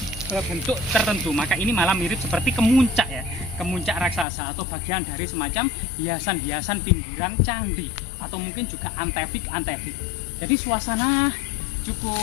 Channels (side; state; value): right; drops out; at 4.2 s